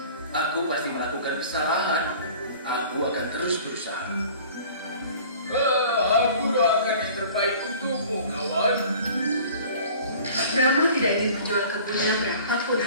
Aku pasti melakukan kesalahan. Aku akan terus berusaha. Aku doakan yang terbaik untukmu, kawan. Rama tidak ingin menjual kebunnya berapapun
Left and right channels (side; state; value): both; inverted; correlation -0.47